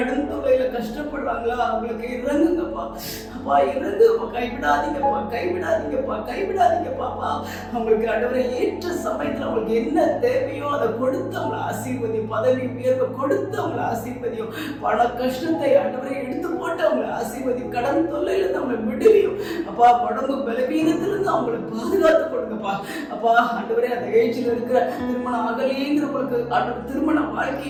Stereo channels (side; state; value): both; identical; correlation 1.00